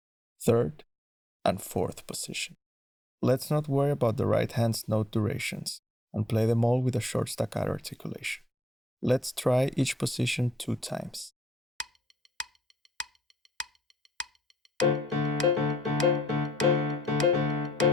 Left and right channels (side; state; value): both; normal; correlation 0.69